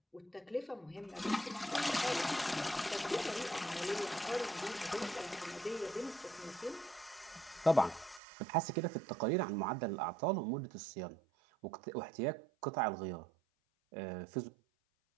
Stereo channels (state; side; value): drops out; left; at 8.2 s